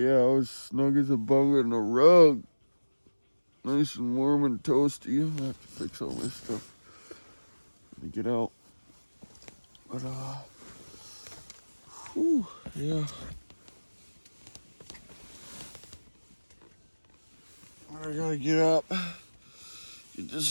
I was snug as a bug in a rug. Nice and warm and toasty. I'm gonna have to fix all this stuff to get out. But yeah. I gotta get up, get this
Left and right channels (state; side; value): inverted; both; correlation -1.00